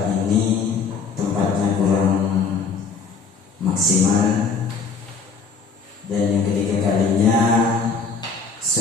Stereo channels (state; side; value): quieter; right; 5.1 dB